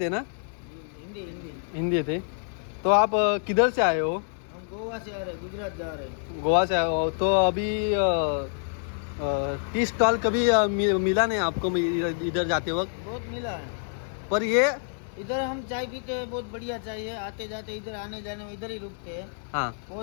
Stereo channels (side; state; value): right; silent; digital silence